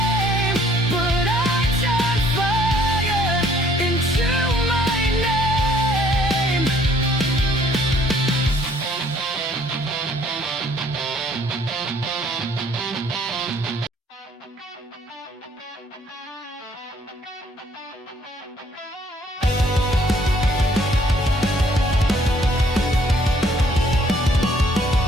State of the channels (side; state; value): both; normal; correlation 0.61